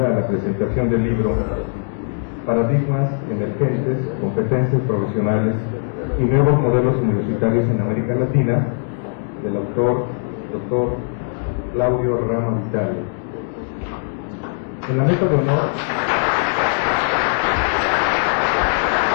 a la presentación del libro Paradigmas Emergentes, Competencias Profesionales y Nuevos Modelos Universitarios en América Latina, del autor Dr. Claudio Rama Vitale. En la mesa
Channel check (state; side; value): silent; right; digital silence